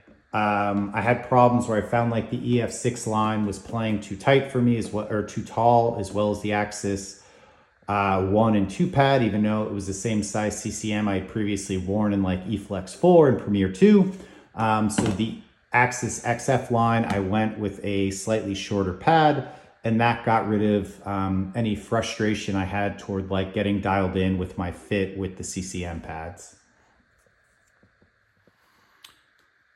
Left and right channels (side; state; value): both; identical; correlation 1.00